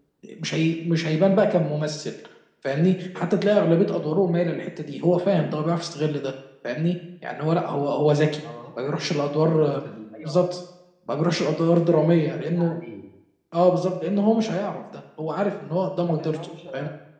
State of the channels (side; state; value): both; identical; correlation 1.00